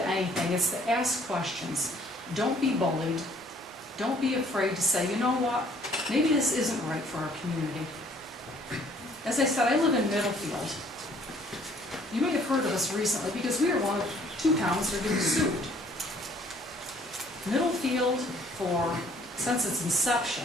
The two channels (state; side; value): normal; both; correlation 0.59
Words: anything, it's to ask questions. Don't be bullied. Don't be afraid to say, you know what, maybe this isn't right for our community. As I said, I live in Middlefield. You may have heard of us recently because we are one of 2 towns that are getting sued. Middlefield, since its